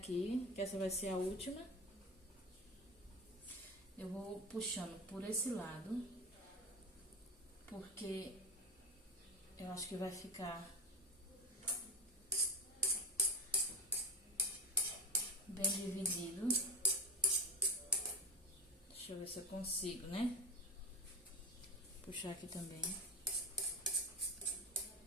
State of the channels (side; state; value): both; normal; correlation 0.23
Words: que essa vai ser a última. Eu vou puxando por esse lado, porque eu acho que vai ficar bem dividido. Deixa eu ver se eu consigo, né? Puxar aqui também.